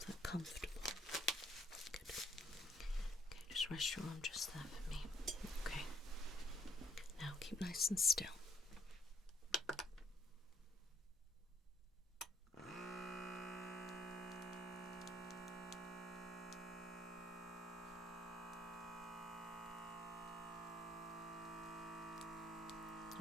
Comfortable. Good. Okay, just rest your arm just there for me. Okay. Now keep nice and still.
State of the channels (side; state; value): both; normal; correlation 0.66